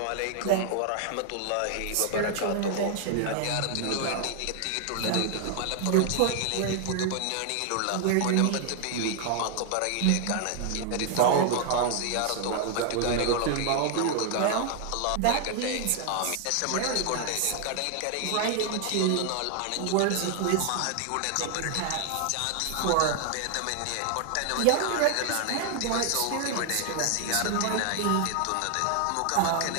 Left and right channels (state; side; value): different; both; correlation 0.00